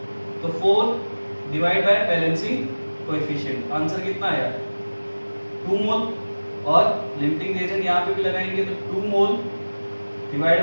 तो 4 divide by balancing coefficient, answer कितना आया? 2 मोल। और लिमिटिंग रिएजेंट यहाँ पे भी लगाएंगे तो 2 मोल divide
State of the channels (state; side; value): inverted; both; correlation -1.00